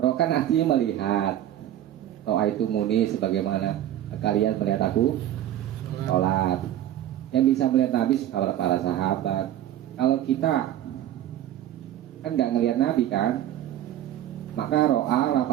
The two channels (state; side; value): quieter; left; 12.0 dB